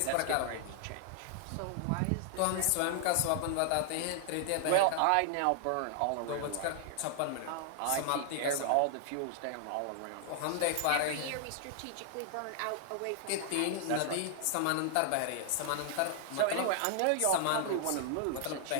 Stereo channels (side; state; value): both; different; correlation 0.00